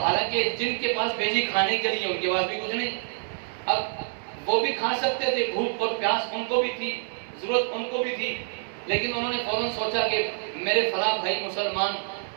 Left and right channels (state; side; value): silent; left; digital silence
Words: حالانکہ جن کے پاس بھیجی کھانے کے لیے ان کے پاس بھی کچھ نہیں، اب وہ بھی کھا سکتے تھے، بھوک اور پیاس ان کو بھی تھی، ضرورت ان کو بھی تھی، لیکن انہوں نے فوراً سوچا کہ میرے فلاں بھائی مسلمان،